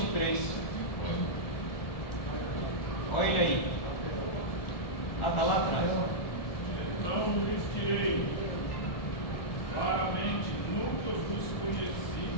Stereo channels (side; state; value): right; late; 1.2 ms